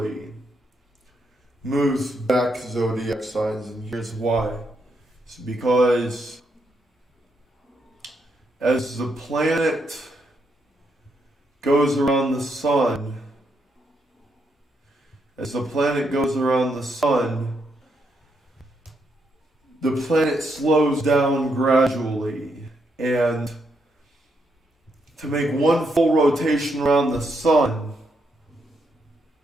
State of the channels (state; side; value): normal; both; correlation 0.79